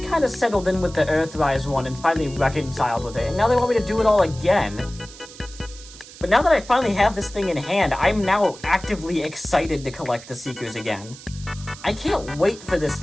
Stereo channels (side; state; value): right; noise; hiss, 18 dB below the sound